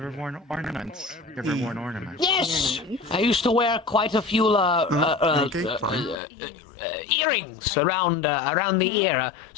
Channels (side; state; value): right; drops out; at 6.2 s